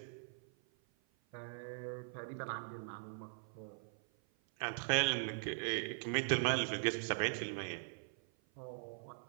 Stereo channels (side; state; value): left; silent; 50 dB below the other